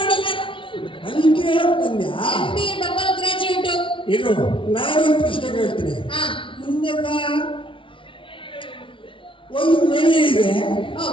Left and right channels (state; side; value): late; right; 0.25 ms